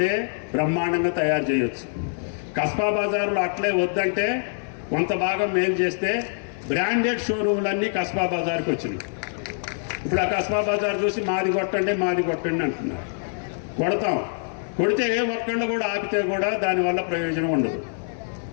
బ్రహ్మాండంగా తయారు చేయొచ్చు. కస్బా బజార్లో అట్లే వద్దంటే కొంత భాగం మేలు చేస్తే బ్రాండెడ్ షోరూమ్లన్నీ కస్బా బజార్కి వచ్చినాయి. ఇప్పుడు ఆ కస్బా బజార్ చూసి మాది కొట్టండి అంటున్నారు. కొడతాం, కొడితే ఏ ఒక్కళ్ళు కూడా ఆపితే కూడా దానివల్ల ప్రయోజనం ఉండదు.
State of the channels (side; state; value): right; silent; digital silence